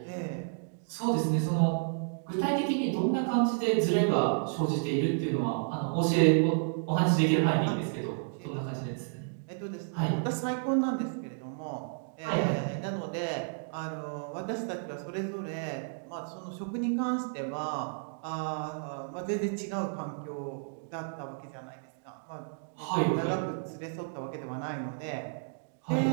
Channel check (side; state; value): left; silent; digital silence